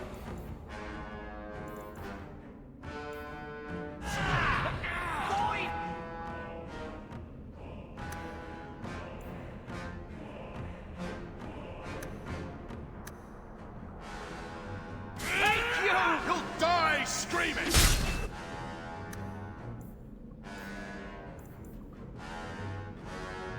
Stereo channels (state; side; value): identical; both; correlation 1.00